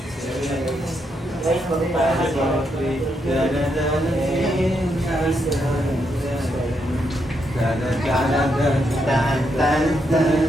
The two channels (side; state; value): both; normal; correlation 0.79